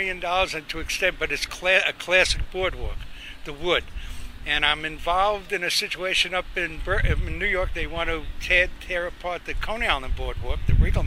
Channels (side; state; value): both; identical; correlation 1.00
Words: and to extend, but it's a classic boardwalk, the wood. And I'm involved in a situation up in New York. They want to tear apart the Coney Island boardwalk, the